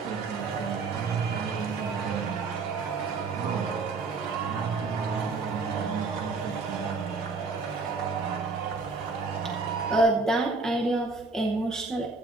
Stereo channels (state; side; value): quieter; left; 4.0 dB